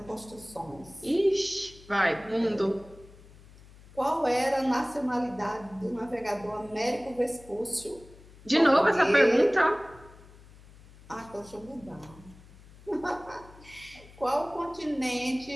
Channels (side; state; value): left; noise; hum, 22 dB below the sound